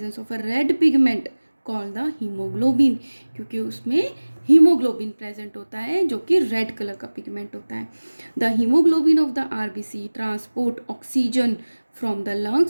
of a red pigment called the haemoglobin, क्योंकि उसमें हीमोग्लोबिन प्रेजेंट होता है जो कि रेड कलर का पिगमेंट होता है। The haemoglobin of the RBC transport oxygen from the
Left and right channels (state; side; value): inverted; both; correlation -1.00